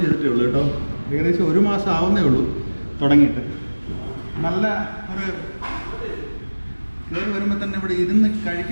ചെയ്തിട്ടേ ഉള്ളൂ കേട്ടോ. ഏകദേശം 1 മാസം ആവുന്നേ ഉള്ളൂ തുടങ്ങിയിട്ട്. നല്ല ഒരു കയറി വരുമ്പോൾ തന്നെ ഇവിടെ ഇരുന്ന്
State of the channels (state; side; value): inverted; both; correlation -1.00